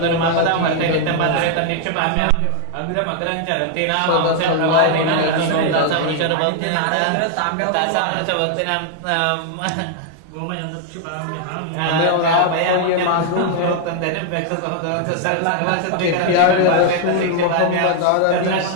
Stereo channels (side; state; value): both; different; correlation 0.00